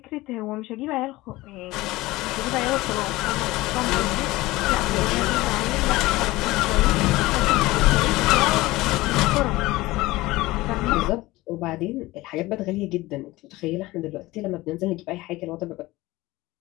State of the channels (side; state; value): right; quieter; 19.4 dB